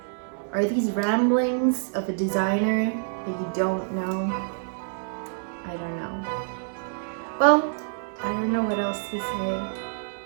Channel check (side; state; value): left; silent; 60 dB below the other